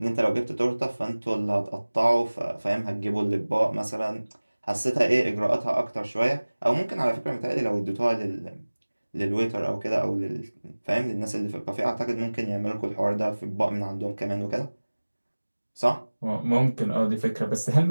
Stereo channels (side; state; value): both; inverted; correlation -1.00